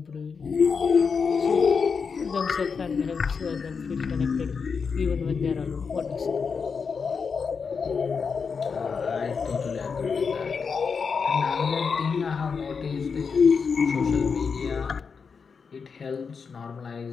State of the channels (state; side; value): quieter; right; 5.6 dB